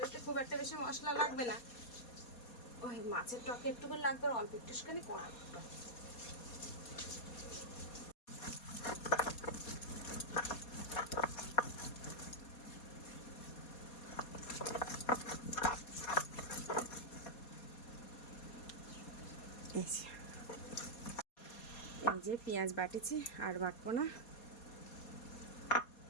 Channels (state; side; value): late; right; 4.2 ms